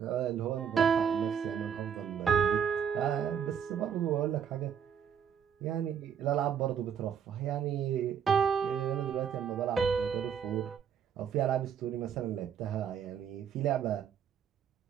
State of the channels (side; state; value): left; quieter; 7.8 dB